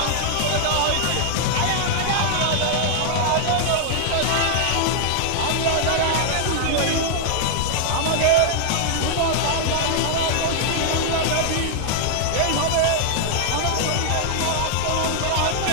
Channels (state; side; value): different; both; correlation -0.01